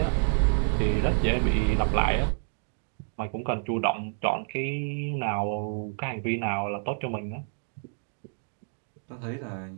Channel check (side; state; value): left; silent; 59 dB below the other